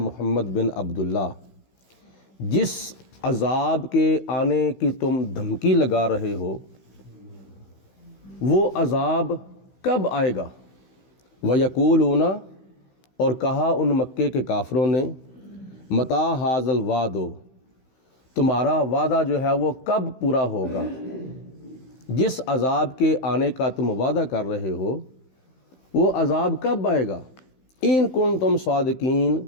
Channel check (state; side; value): late; right; 16 ms